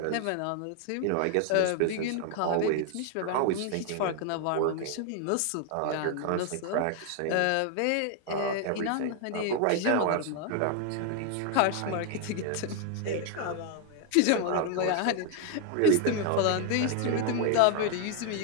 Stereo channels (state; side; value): different; both; correlation 0.00